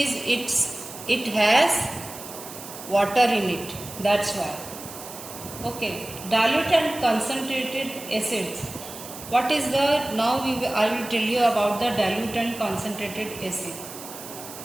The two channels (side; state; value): right; noise; hiss, 13 dB below the sound